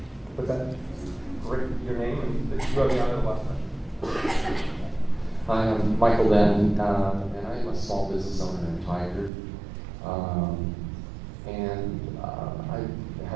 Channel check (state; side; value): drops out; left; at 9.3 s